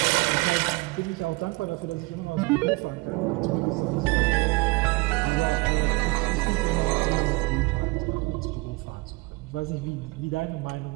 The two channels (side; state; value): left; quieter; 25.3 dB